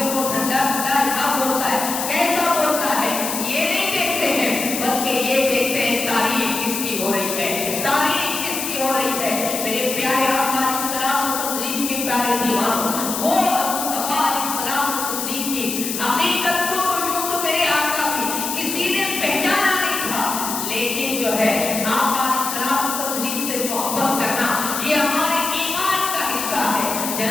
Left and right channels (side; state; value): left; noise; hiss, 4 dB below the sound